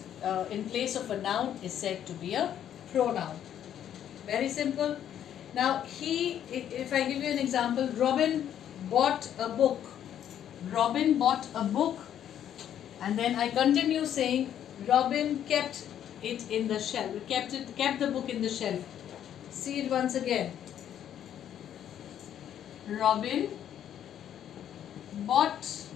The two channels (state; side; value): quieter; right; 10.2 dB